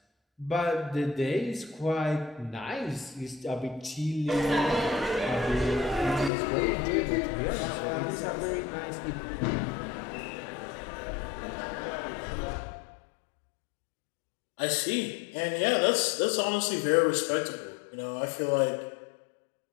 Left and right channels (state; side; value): drops out; right; at 6.3 s